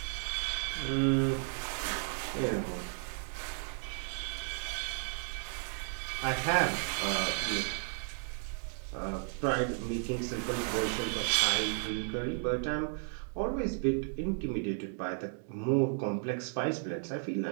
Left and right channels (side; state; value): left; silent; 55 dB below the other